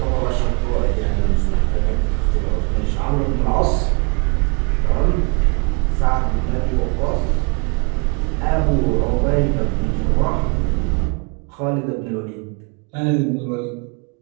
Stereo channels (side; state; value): left; quieter; 33.5 dB